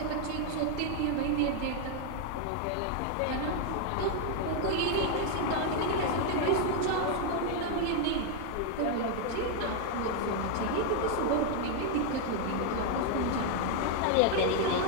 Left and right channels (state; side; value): different; both; correlation 0.00